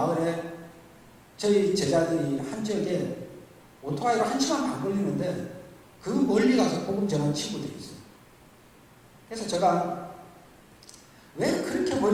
저희 제자들이 한 지역에 오토바이로 1시간 반 걸리는데 그 멀리 가서 복음 전하는 친구들이 있어요. 그래서 제가 왜 그렇게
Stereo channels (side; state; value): both; identical; correlation 1.00